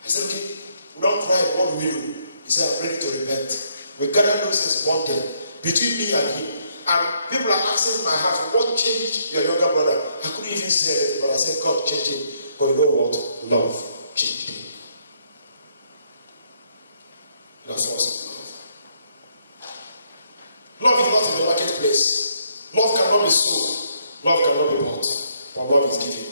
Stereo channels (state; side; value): inverted; both; correlation -0.72